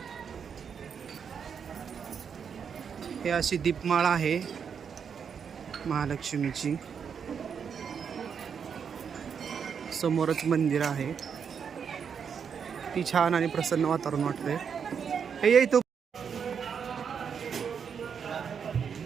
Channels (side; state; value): left; quieter; 6.9 dB